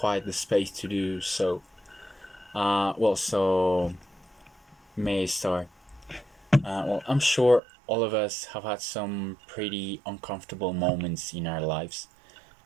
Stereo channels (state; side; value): drops out; left; at 7.6 s